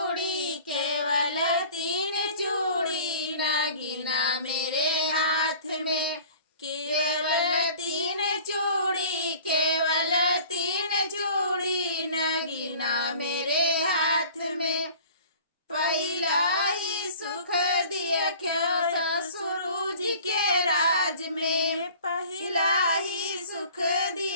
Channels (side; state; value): both; inverted; correlation -0.46